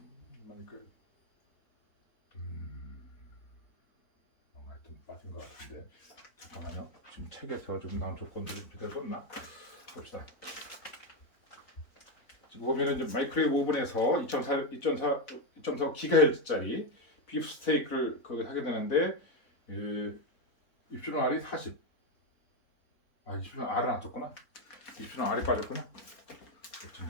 그러니까 뭔가 하여튼 빠진 것 같은데 잠깐만요. 지금 책에서 좀 나온 조건들을 제대로 썼나 봅시다. 지금 보면은 이제 마이크로웨이브 오븐에서 2.4 기가헤르츠짜리 비프 스테이크를 거기 하게 되는데 입술은 R이 40. 입술은 R은 안 썼구나. 입술은 R이 빠졌구나.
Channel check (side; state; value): right; late; 4.0 ms